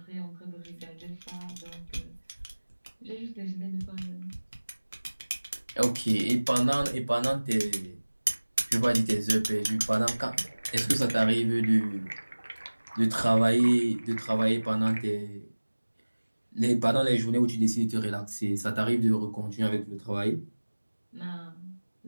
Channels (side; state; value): both; inverted; correlation -1.00